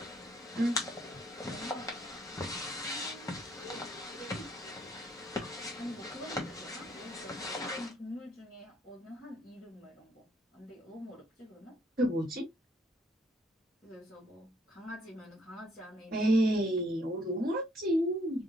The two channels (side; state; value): both; normal; correlation 0.66